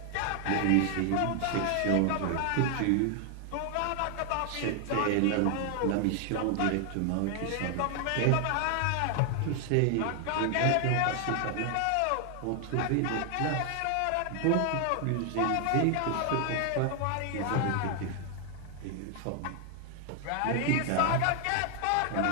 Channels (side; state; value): both; different; correlation 0.00